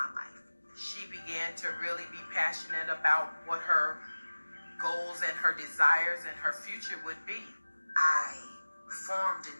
life. She began to really be passionate about what her goals and her desires and her future would be. I formed a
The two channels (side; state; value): both; inverted; correlation -1.00